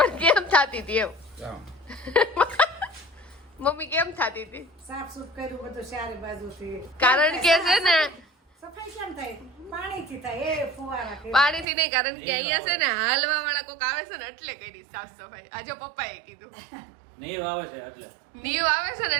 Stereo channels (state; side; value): drops out; left; at 11.7 s